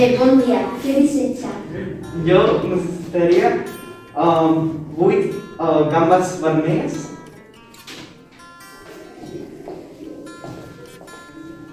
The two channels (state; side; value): identical; both; correlation 1.00